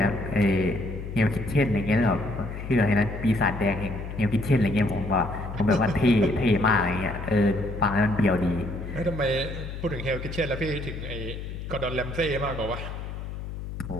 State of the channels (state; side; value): noise; left; hum, 8 dB below the sound